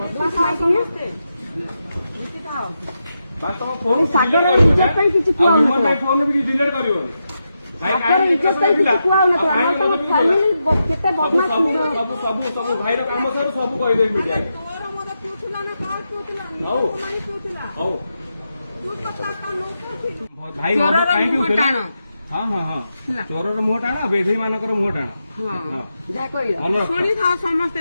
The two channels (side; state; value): both; inverted; correlation -0.86